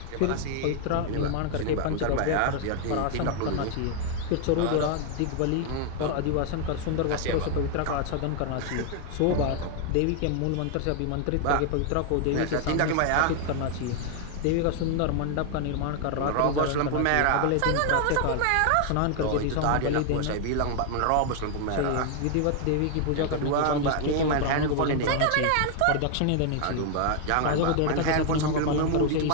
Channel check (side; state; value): both; different; correlation 0.00